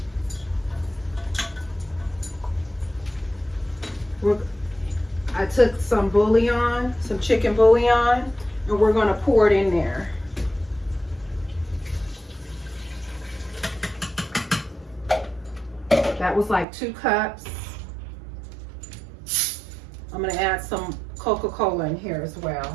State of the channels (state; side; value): drops out; left; at 16.7 s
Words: I took some bouillon, some chicken bouillon, and we're gonna pour it in there. That was like 2 cups. I'm gonna add some Coca-Cola in here as